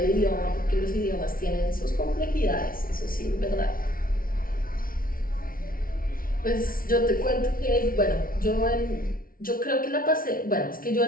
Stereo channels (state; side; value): late; right; 0.42 ms